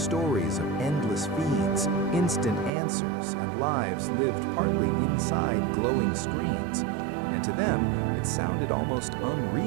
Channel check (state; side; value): drops out; left; at 2.7 s